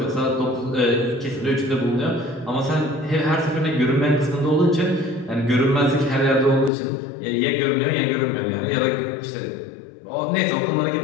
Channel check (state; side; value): drops out; right; at 6.7 s